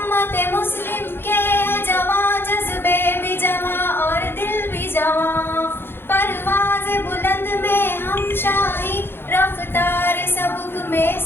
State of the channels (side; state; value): right; late; 0.11 ms